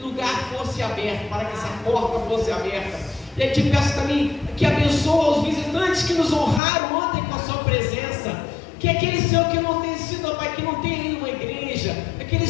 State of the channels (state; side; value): drops out; right; at 6.6 s